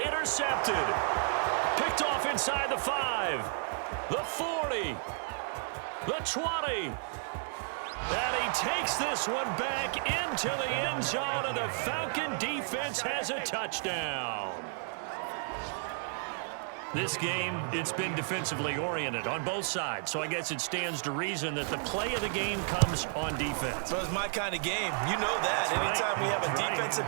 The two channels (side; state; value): left; silent; 56 dB below the other